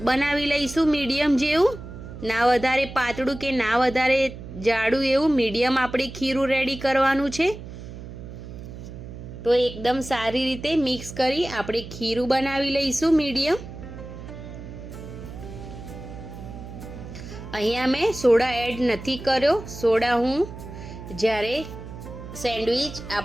બનાવી લઈશું, મીડિયમ જેવું, ના વધારે પાતળું કે ના વધારે જાડું એવું મીડિયમ આપણે ખીરું રેડી કરવાનું છે। તો એકદમ સારી રીતે મિક્સ કરી આપણે ખીરું બનાવી લઈશું મીડિયમ। અહીંયા મેં સોડા એડ નથી કર્યો, સોડા હું જ્યારે સેન્ડવિચ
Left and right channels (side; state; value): right; noise; hum, 12 dB below the sound